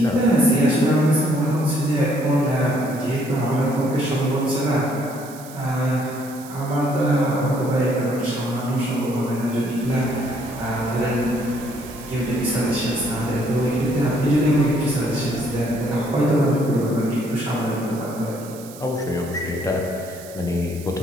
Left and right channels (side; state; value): right; noise; hiss, 18 dB below the sound